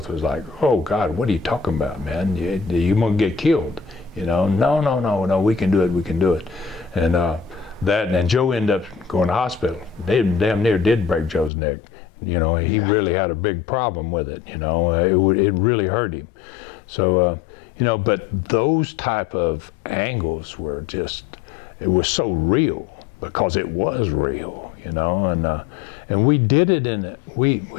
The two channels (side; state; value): right; drops out; at 11.5 s